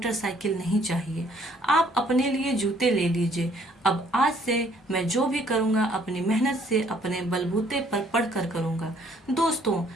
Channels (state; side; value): normal; both; correlation 0.63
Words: नहीं चाहिए, आप अपने लिए जूते ले लीजिए। अब आज से मैं जो भी करूँगा अपनी मेहनत से अपने बलबूते पर पढ़कर करूँगा। दोस्तों,